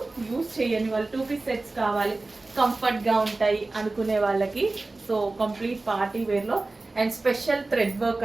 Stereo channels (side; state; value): left; quieter; 3.2 dB